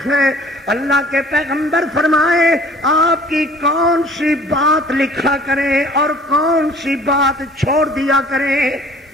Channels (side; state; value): both; normal; correlation 0.51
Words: ہیں۔ اللہ کے پیغمبر فرمائے آپ کی کون سی بات لکھا کریں اور کون سی بات چھوڑ دیا کریں؟